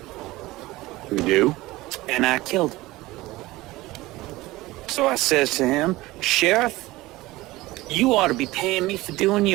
We do? And I killed him. So I says to him, Sheriff, you ought to be paying me for doing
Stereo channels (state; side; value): quieter; left; 19.0 dB